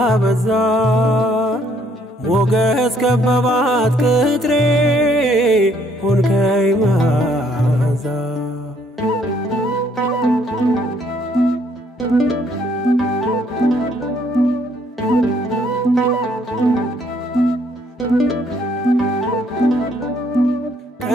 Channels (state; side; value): normal; both; correlation 0.66